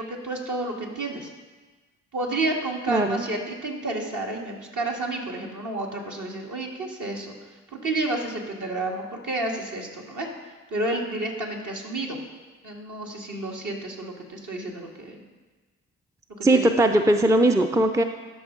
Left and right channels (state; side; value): normal; both; correlation 0.57